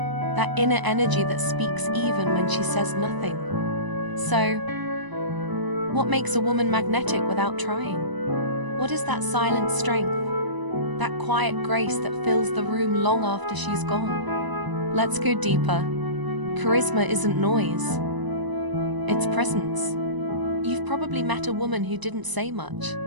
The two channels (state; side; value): late; left; 1.0 ms